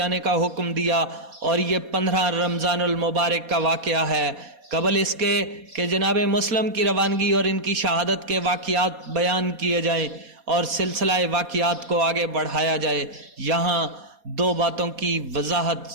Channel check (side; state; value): left; late; 4.2 ms